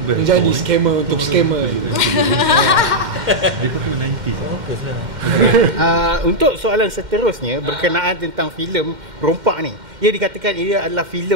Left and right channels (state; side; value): late; left; 2.1 ms